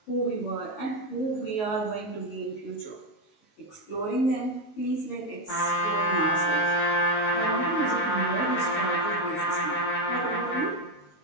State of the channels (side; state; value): right; late; 19 ms